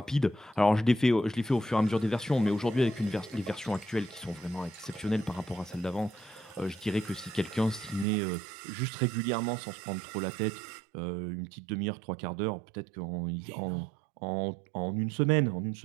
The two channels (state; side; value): drops out; left; at 8.1 s